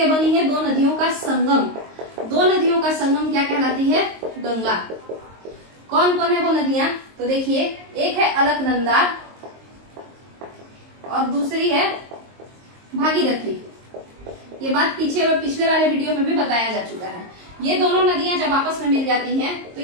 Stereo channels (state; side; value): late; left; 22 ms